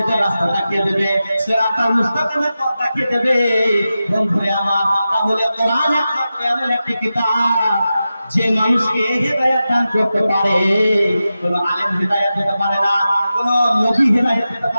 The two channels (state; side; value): inverted; both; correlation -0.92